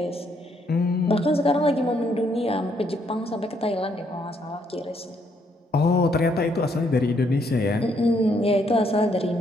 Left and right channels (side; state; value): both; normal; correlation 0.72